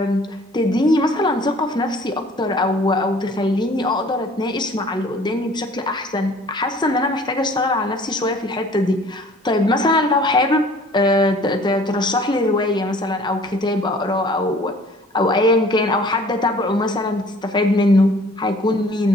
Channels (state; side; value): normal; both; correlation 0.52